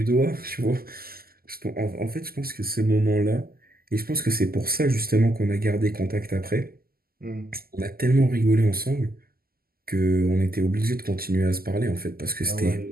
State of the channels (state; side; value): late; left; 0.43 ms